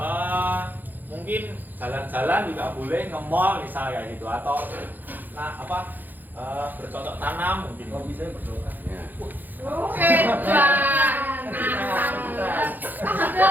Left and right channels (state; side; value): late; left; 0.086 ms